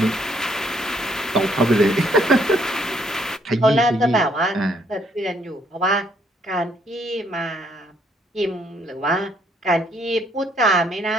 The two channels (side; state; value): both; normal; correlation 0.69